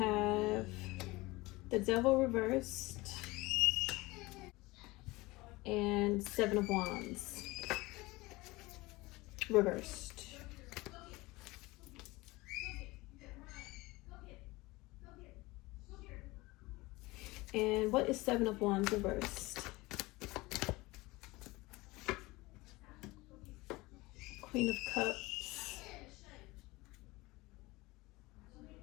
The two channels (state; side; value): quieter; right; 21.5 dB